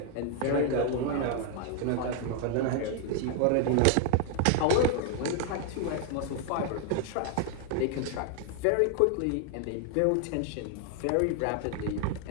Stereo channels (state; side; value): different; both; correlation 0.00